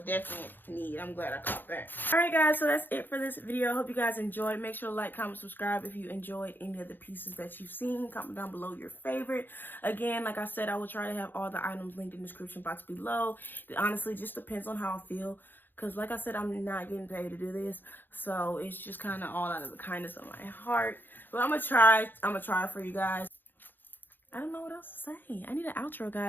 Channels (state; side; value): late; right; 0.092 ms